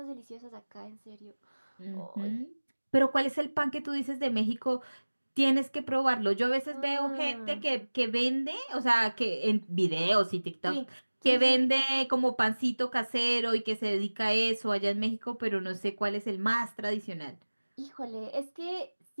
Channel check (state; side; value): inverted; both; correlation -1.00